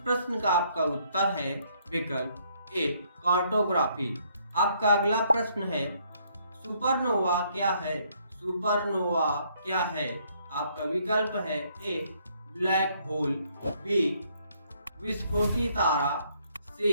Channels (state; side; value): inverted; both; correlation -0.68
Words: का आपका उत्तर है विकल्प ए कार्टोग्राफी। आपका अगला प्रश्न है सुपरनोवा क्या है? सुपरनोवा क्या है? आपका विकल्प है ए ब्लैक होल, बी विस्फोटी तारा, सी